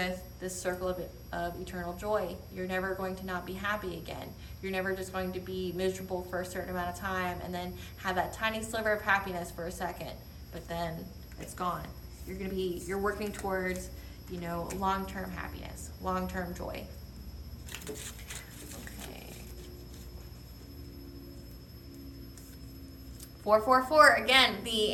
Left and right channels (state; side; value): identical; both; correlation 1.00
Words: this circle of eternal joy. You're never going to not be happy again. You're never just going to be miserable for a certain amount of time and then have that tiny sliver of happiness for a second, but then it's gone. You're working towards, long-term happiness, long-term joy. Okay. 444, again, the